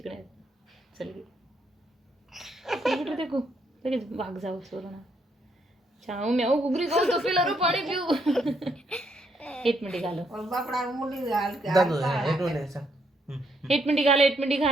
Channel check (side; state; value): both; normal; correlation 0.74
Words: चल गे कुठे देखू लगेच भाग जाऊ सोडून चाऊ म्याऊ गुगरी गाऊ तपेलारो पाणी पिऊ एक मिनिट घालो और बापड़ा मुंडी गाल के दादू हेटो ने सांग एक मिनिट